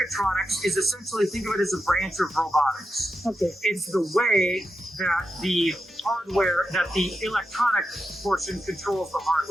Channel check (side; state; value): both; normal; correlation 0.88